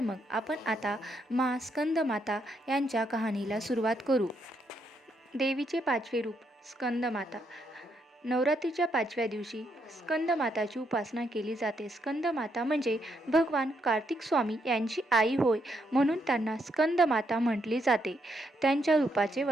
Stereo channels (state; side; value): normal; both; correlation 0.77